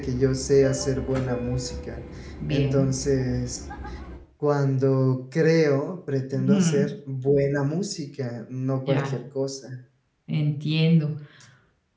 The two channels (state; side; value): identical; both; correlation 1.00